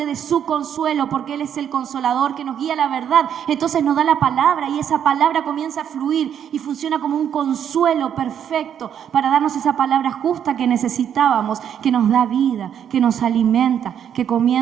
de su consuelo, porque Él es el consolador que nos guía a la verdad. Entonces nos da la palabra y esa palabra comienza a fluir y funciona como un consuelo perfecto para darnos esa palabra justa que necesitábamos, que nos da vida, que nos alimenta, que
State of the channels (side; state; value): left; quieter; 9.0 dB